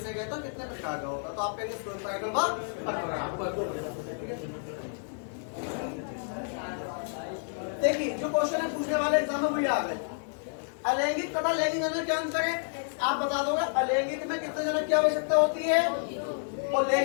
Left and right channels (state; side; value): silent; right; digital silence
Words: कहते हैं, कितने प्रकार का होगा, तो आप कहेंगे परागण व परपरागण। देखिए जो क्वेश्चन है पूछने वाले एग्जाम में वही आ गए। अलैंगिक तथा लैंगिक जनन क्या अंतर है, आप बता दोगे। अलैंगिक में कितने जनन की आवश्यकता होती है, और